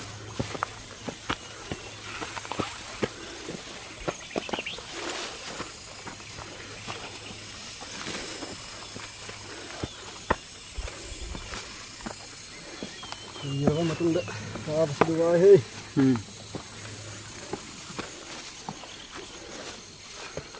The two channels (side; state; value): both; identical; correlation 1.00